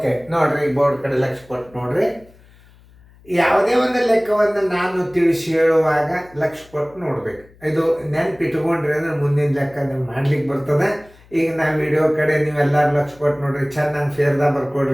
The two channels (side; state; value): left; noise; hum, 27 dB below the sound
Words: ನೋಡ್ರಿ ಬೋರ್ಡ್ ಕಡೆ ಲಕ್ಷ ಕೊಟ್ಟು ನೋಡ್ರಿ. ಯಾವುದೇ ಒಂದು ಲೆಕ್ಕವನ್ನು ನಾನು ತಿಳಿಸಿ ಹೇಳುವಾಗ ಲಕ್ಷ ಕೊಟ್ಟು ನೋಡ್ಬೇಕು. ಇದು ನೆನ್ಪಿಟ್ಕೊಂಡ್ರಿ ಅಂದ್ರೆ ಮುಂದಿನ ಲೆಕ್ಕ ನೀವು ಮಾಡ್ಲಿಕ್ಕೆ ಬರ್ತದೆ. ಈಗ ನಾ ವಿಡಿಯೋ ಕಡೆ ನೀವೆಲ್ಲರೂ ಲಕ್ಷ ಕೊಟ್ಟು ನೋಡ್ರಿ, ಚೆನ್ನಾಗಿ ಫೇರ್ದಾಗ